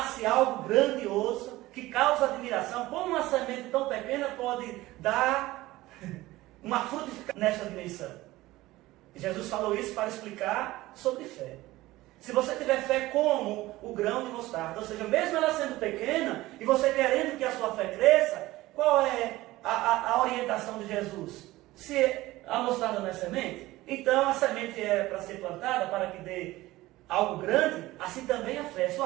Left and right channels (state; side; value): quieter; left; 17.9 dB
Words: algo grandioso, que causa admiração. Como uma semente tão pequena pode dar uma frutificação nesta dimensão? Jesus falou isso para explicar sobre fé. Se você tiver fé como o grão de mostarda, ou seja, mesmo ela sendo pequena, e você querendo que a sua fé cresça, qual é a orientação de Jesus? Se a mostarda não é semente, então a semente é para ser plantada, para que dê algo grande, assim também a fé.